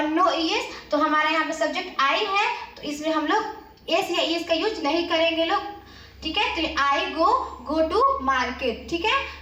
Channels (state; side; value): identical; both; correlation 1.00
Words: नो ई एस, तो हमारा यहाँ पे सब्जेक्ट आई है, तो इसमें हम लोग एस या ई एस का यूज नहीं करेंगे लोग, ठीक है। तो आई गो टू मार्केट, ठीक